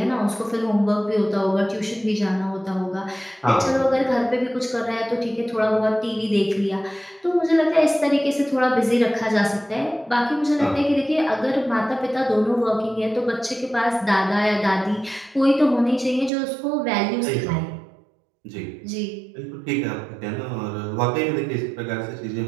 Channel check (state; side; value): drops out; left; at 16.3 s